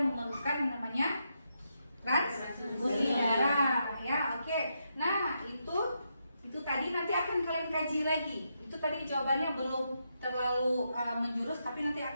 yang namanya transfusi darah ya. Oke, nah itu tadi nanti akan kalian kaji lagi. Itu tadi jawabannya belum terlalu menjurus, tapi nanti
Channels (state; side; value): inverted; both; correlation -0.82